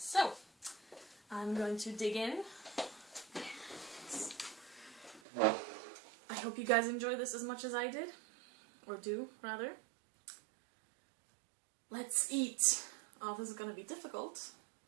I'm going to dig in. I hope you guys enjoy this as much as I did. Or do, rather. Let's eat. Oh, this is gonna be difficult.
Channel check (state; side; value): drops out; left; at 5.2 s